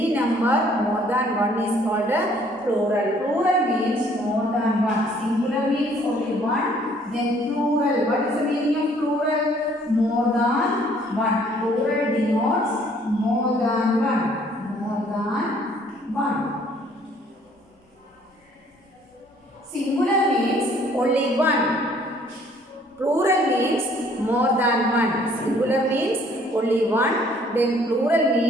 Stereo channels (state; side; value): normal; both; correlation 0.60